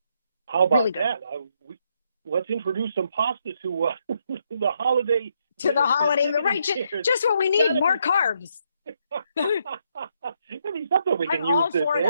How about really that? Let's introduce some pasta to the holiday. To the holiday, right? Just what we need, more carbs. I mean, something we can I'm use all this for in.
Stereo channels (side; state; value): both; inverted; correlation -0.75